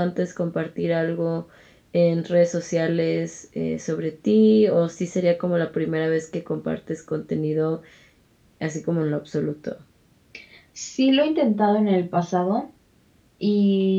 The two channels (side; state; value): both; identical; correlation 1.00